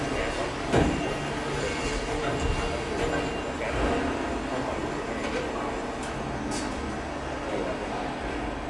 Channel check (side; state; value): both; identical; correlation 1.00